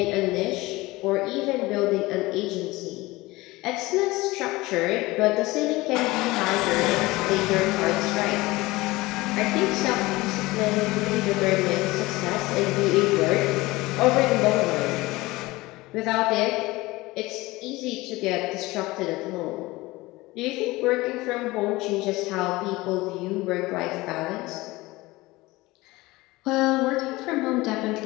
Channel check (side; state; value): right; quieter; 20.4 dB